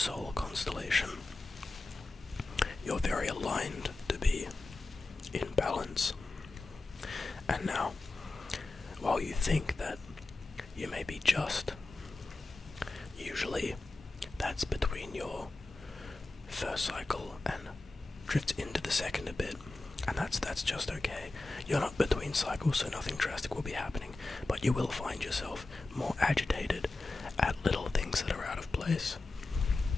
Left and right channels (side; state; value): right; quieter; 3.2 dB